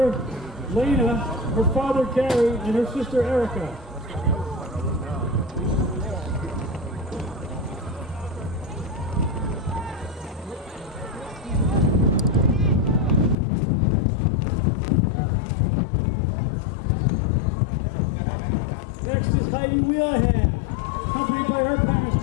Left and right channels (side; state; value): right; drops out; at 13.4 s